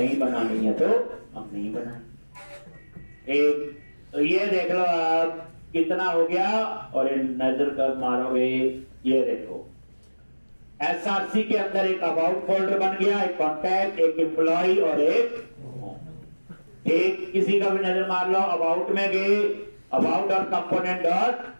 बनानी है तो हम नहीं बनाएंगे। एक तो ये देख लो आप कितना हो गया। और नजर कर मारोगे, ये देखो SRC के अंदर एक अबाउट फोल्डर बन गया, एक कॉन्टैक्ट, एक एम्प्लॉय और एक एक किसी का भी नजर मार लो। अबाउट में गए, about dot component dot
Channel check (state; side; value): inverted; both; correlation -1.00